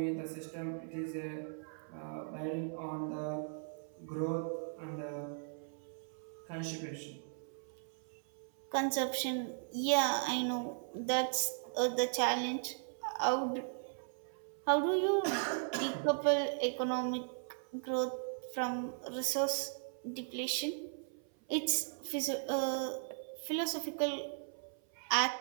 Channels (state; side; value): silent; left; 53 dB below the other